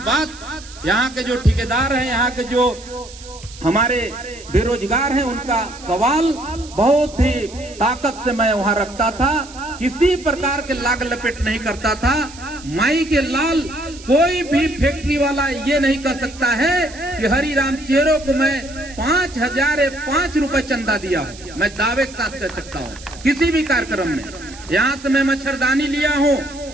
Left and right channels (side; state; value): right; noise; hiss, 18 dB below the sound